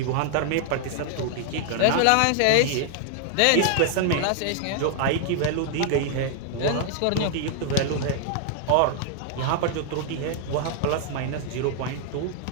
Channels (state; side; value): different; both; correlation 0.00